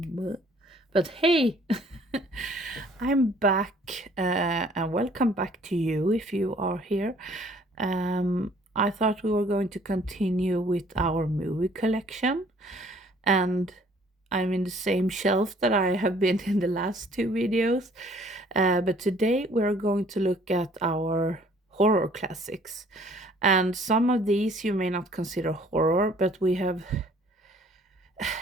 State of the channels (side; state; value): both; normal; correlation 0.57